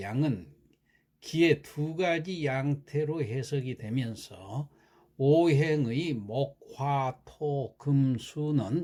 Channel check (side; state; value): both; identical; correlation 1.00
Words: 양은 기의 두 가지 양태로 해석이 되면서 오행의 목, 화, 토, 금,